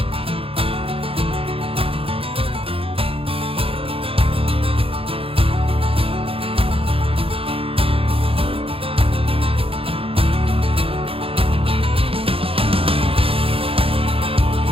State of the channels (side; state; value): left; late; 0.27 ms